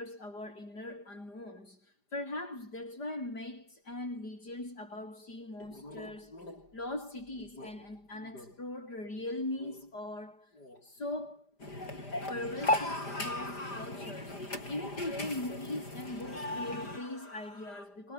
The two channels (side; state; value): right; late; 5.0 ms